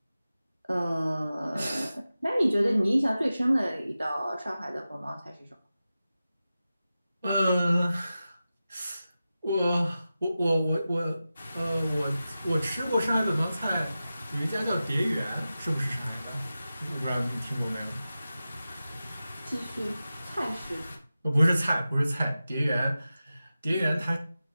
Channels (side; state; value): both; inverted; correlation -0.94